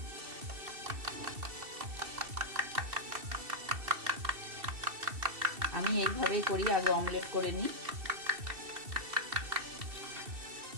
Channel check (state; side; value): late; left; 2.7 ms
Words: আমি এইভাবেই করি, আগে অমলেট করে নিই।